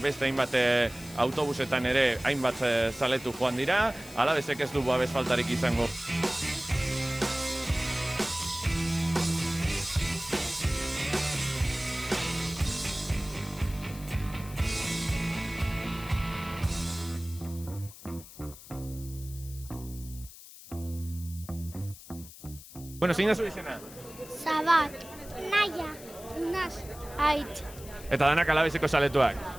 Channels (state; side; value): noise; left; hiss, 17 dB below the sound